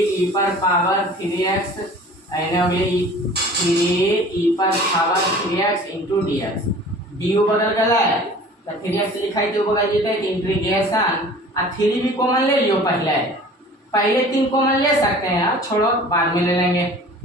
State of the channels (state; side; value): normal; both; correlation 0.45